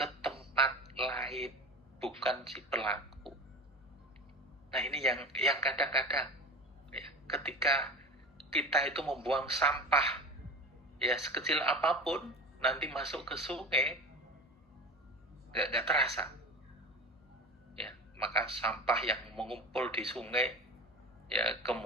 tempat lain, bukan si pelaku. Nah, ini yang kadang-kadang ya, ketika kita itu membuang sampah ya sekecil apapun, nanti masuk ke sungai nggak terasa. Ya, maka sampah yang mengumpul di sungai ya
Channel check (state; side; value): normal; both; correlation 0.32